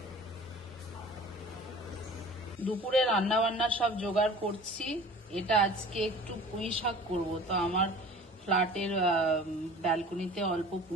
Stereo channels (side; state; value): both; normal; correlation 0.43